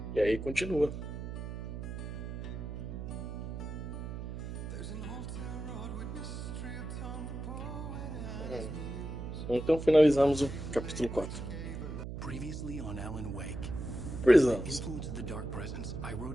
E aí continua. Então finalizamos o capítulo 4. Previously on Alan Wake. Prisons. Influence of the dark presence, I wrote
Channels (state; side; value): noise; right; hum, 6 dB below the sound